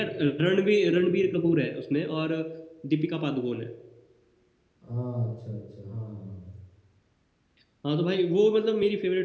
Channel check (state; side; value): identical; both; correlation 1.00